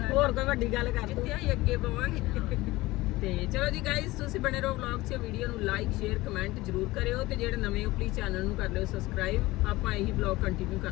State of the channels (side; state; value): right; quieter; 19.3 dB